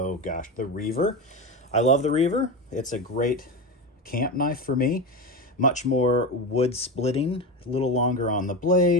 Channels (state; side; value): normal; both; correlation 0.19